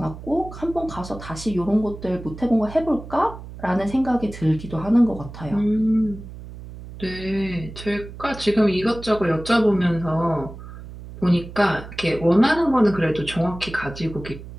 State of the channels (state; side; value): noise; right; hum, 14 dB below the sound